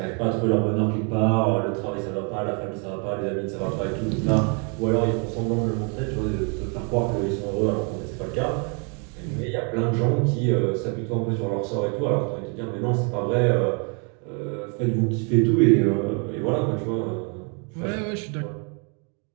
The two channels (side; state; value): left; quieter; 36.8 dB